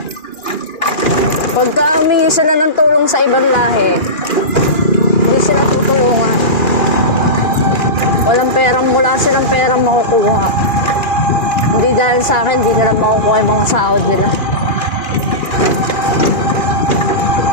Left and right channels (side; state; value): right; late; 2.4 ms